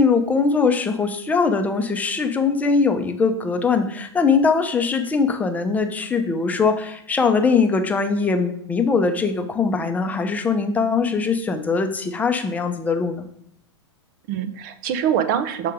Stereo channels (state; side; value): quieter; right; 3.7 dB